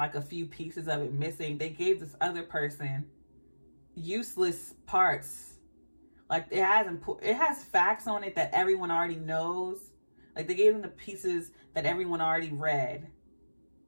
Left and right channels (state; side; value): inverted; both; correlation -1.00